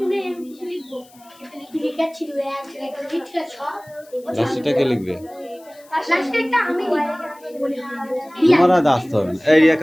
লাস্টটা লিখবে? তোমার আর আসতে হবে না। এই Riya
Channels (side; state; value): left; noise; hiss, 27 dB below the sound